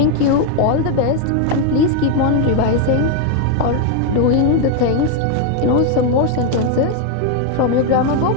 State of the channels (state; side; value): different; both; correlation 0.01